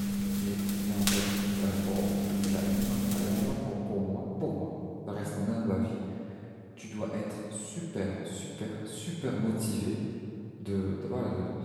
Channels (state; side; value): identical; both; correlation 1.00